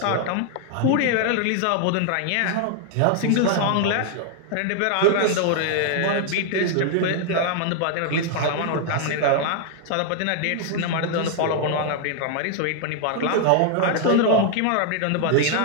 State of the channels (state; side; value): different; both; correlation 0.00